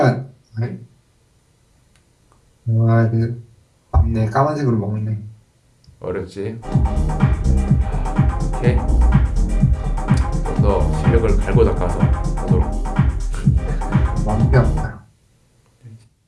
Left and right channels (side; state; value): both; identical; correlation 1.00